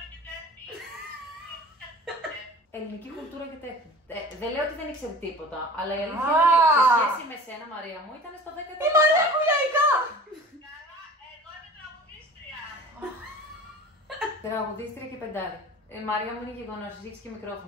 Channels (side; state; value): both; normal; correlation 0.41